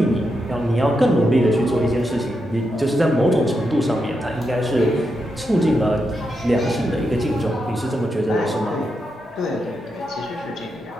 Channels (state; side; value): normal; both; correlation 0.85